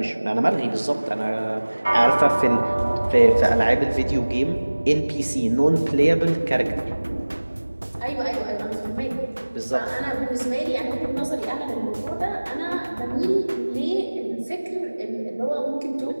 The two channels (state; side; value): inverted; both; correlation -1.00